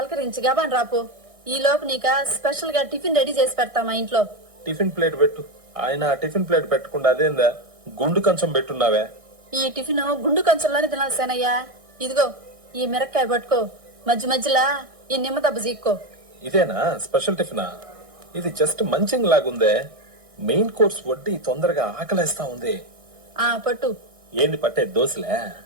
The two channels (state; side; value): late; left; 1.6 ms